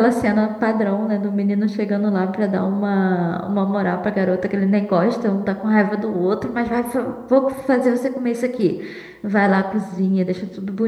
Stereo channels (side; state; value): both; identical; correlation 1.00